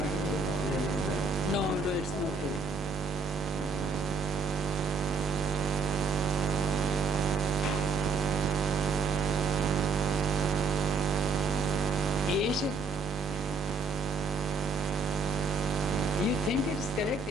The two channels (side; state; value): left; quieter; 4.0 dB